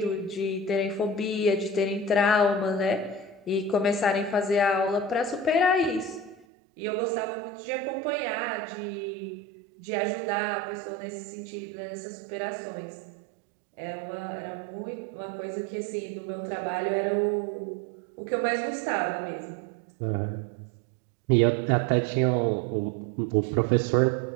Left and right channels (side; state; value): left; drops out; at 6.5 s